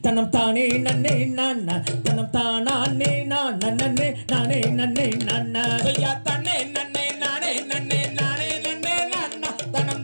தானே நன்னே நானா தனம் தானே நானே நானே நன்னே நானா ஐயா தன்னே நன்னே நானே நன்னே நானே நன்னே நானா தனம்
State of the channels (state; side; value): inverted; both; correlation -1.00